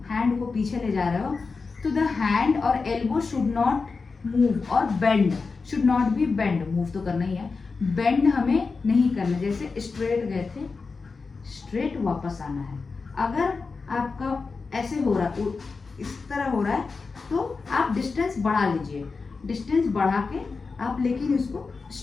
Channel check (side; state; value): right; quieter; 4.5 dB